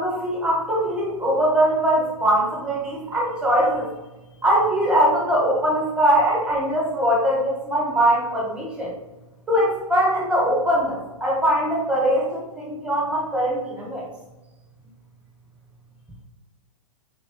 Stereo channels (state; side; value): normal; both; correlation 0.43